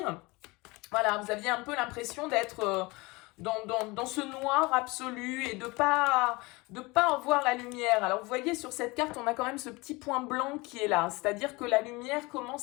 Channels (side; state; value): right; quieter; 24.1 dB